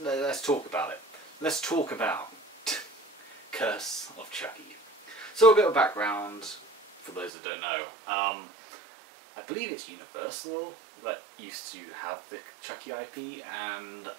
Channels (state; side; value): drops out; left; at 7.3 s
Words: talk about it. Let's talk about Curse of Chucky. So a bit of background, for those that don't know. I believe it's Universal that used to have the Chucky IP, and